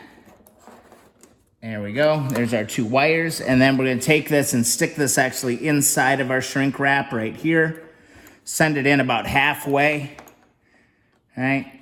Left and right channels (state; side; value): identical; both; correlation 1.00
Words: There we go, there's our two wires. And then we're gonna take this and stick this actually inside of our shrink wrap right here. Send it in about halfway. All right,